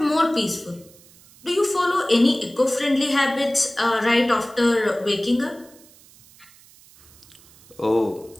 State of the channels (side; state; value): right; noise; hiss, 26 dB below the sound